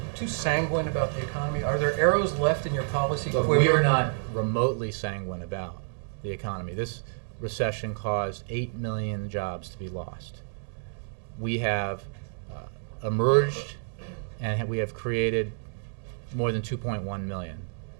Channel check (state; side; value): silent; left; 59 dB below the other